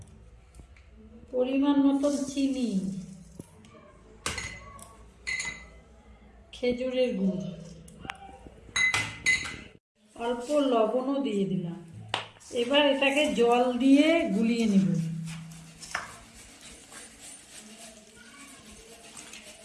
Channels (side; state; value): both; identical; correlation 1.00